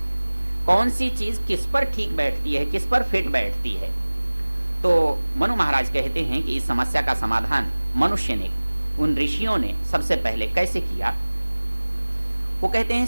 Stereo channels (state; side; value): inverted; both; correlation -1.00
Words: कौन सी चीज किस पर ठीक बैठती है, किस पर फिट बैठती है। तो मनु महाराज कहते हैं कि इस समस्या का समाधान मनुष्य ने, उन ऋषियों ने सबसे पहले कैसे किया? वो कहते हैं